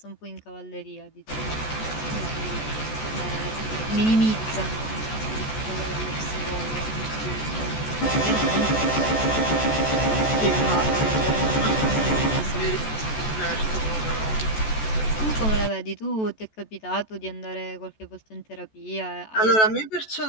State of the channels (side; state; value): right; late; 14 ms